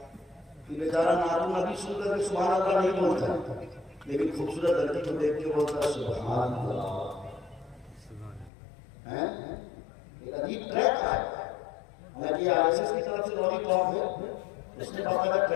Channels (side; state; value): right; drops out; at 8.5 s